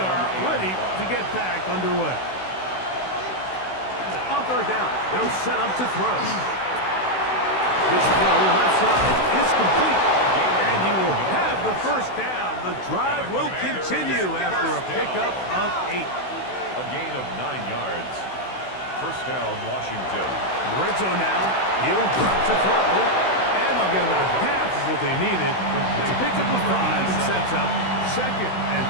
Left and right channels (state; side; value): late; right; 16 ms